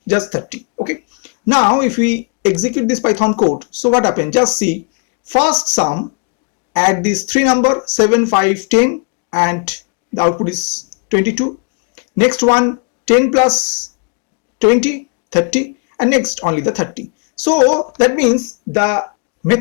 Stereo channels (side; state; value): right; quieter; 36.6 dB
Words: just 30. Okay. Now if we execute this Python code, so what happened? Just see, first sum, add these three number 7, 5, 10, and the output is 22. Next one, 10 plus 20, 30, and next only the 30. So that means the